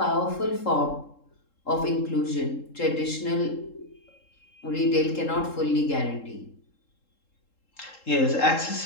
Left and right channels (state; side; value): late; right; 3.7 ms